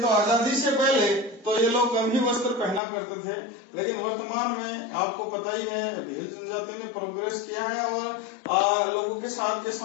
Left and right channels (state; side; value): drops out; right; at 2.8 s